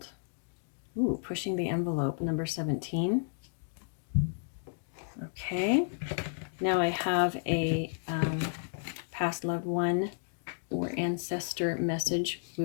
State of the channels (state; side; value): silent; right; digital silence